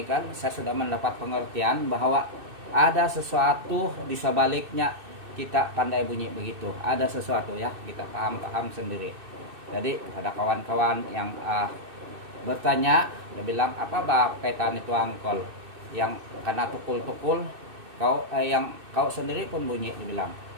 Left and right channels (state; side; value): late; left; 2.6 ms